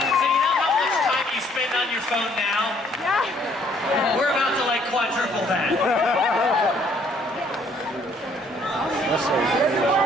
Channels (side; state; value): both; normal; correlation 0.63